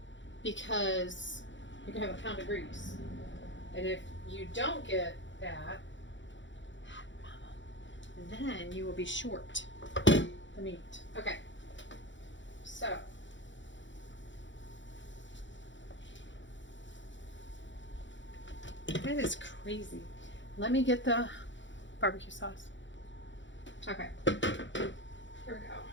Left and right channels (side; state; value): right; late; 0.54 ms